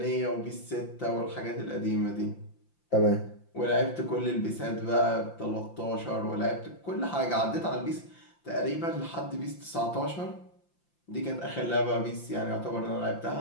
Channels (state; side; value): late; right; 5.8 ms